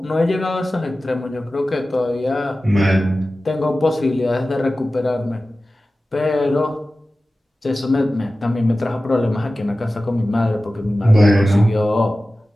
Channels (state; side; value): normal; both; correlation 0.95